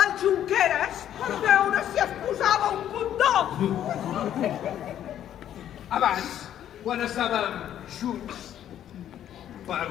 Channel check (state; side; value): quieter; right; 10.8 dB